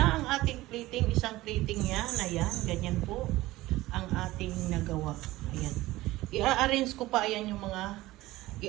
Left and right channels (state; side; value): quieter; left; 17.8 dB